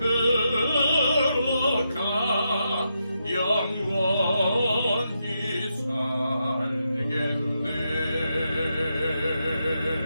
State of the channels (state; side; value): inverted; both; correlation -0.83